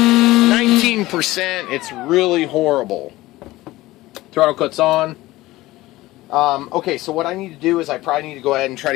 It's really horrible. Throttle cut's on. Okay, so what I need to do is I probably need to go ahead and try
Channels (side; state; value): right; quieter; 18.0 dB